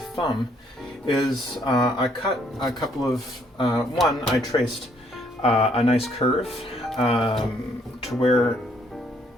is I cut a couple of, I traced a nice curve to where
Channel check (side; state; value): both; normal; correlation 0.67